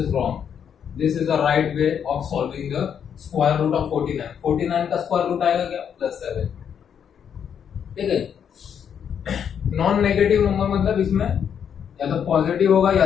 wrong. This is the right way of solving the square root of 49। 49 का स्क्वायर रूट आएगा क्या? +7। ठीक है, नॉन नेगेटिव नंबर मतलब इसमें या तो पॉजिटिव होगा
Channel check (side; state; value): right; quieter; 8.1 dB